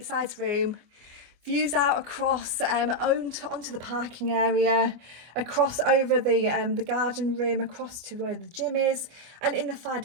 sized room. Views out across onto the parking area, across over the garden room, across to where the gym is, and in the far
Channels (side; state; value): left; late; 25 ms